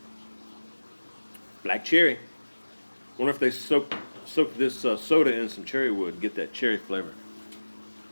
Black cherry. Wonder if they soak this soda in some cherry wood and get that cherry flavor.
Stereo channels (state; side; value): inverted; both; correlation -1.00